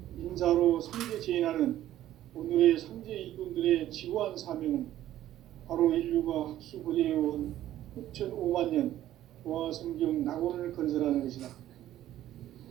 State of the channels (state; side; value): quieter; left; 13.1 dB